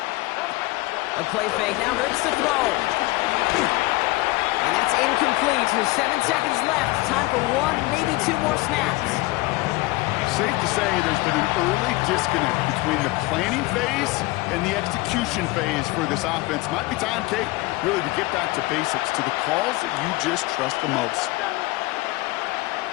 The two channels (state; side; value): quieter; right; 20.9 dB